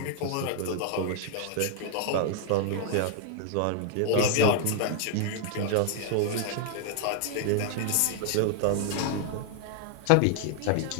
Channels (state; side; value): different; both; correlation 0.00